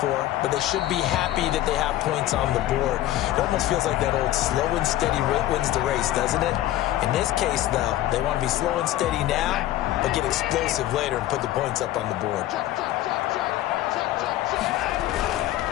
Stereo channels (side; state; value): right; quieter; 14.3 dB